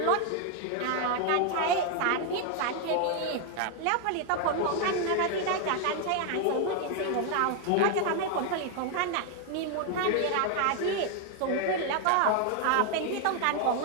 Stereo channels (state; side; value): different; both; correlation 0.01